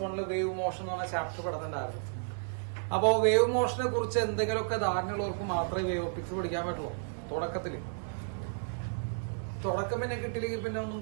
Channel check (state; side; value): silent; left; digital silence